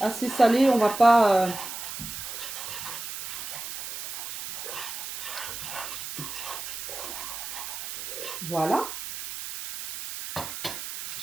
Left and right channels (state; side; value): noise; right; hiss, 7 dB below the sound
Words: assez salé, on va pas voilà.